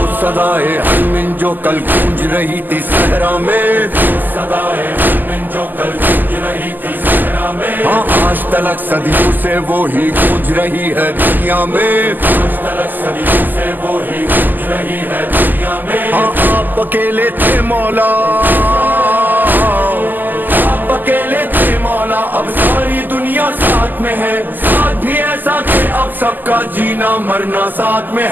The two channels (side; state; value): left; late; 0.087 ms